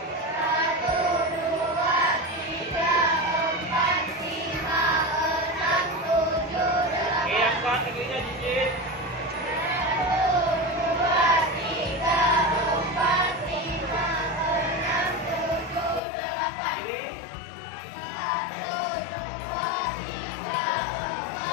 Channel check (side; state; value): right; drops out; at 16.0 s